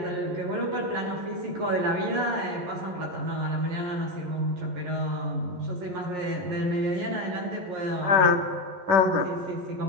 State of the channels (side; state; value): left; late; 11 ms